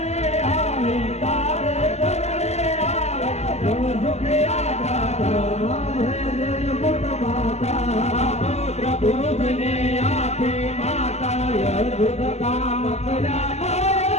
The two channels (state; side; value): late; right; 0.32 ms